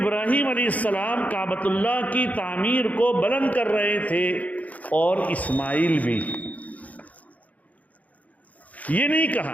علیہ السلام کعبۃ اللہ کی تعمیر کو بلند کر رہے تھے، اور اسماعیل بھی۔ یہ نہیں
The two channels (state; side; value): late; right; 0.073 ms